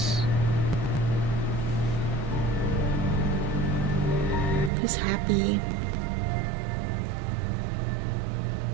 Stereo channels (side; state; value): left; drops out; at 4.7 s